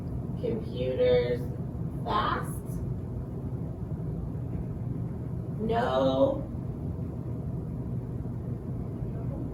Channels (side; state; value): both; identical; correlation 1.00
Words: computers fast? No.